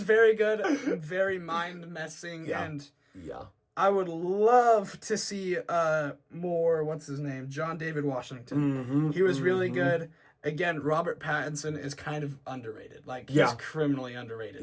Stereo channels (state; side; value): identical; both; correlation 1.00